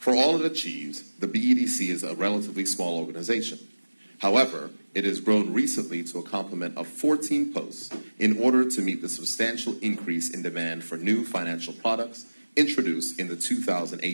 all it achieves, the BEDC is a relatively small organization. However, it has grown recently to a complement of 14 posts in order to meet the substantial increase in demand for new financial products introduced in the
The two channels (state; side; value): inverted; both; correlation -1.00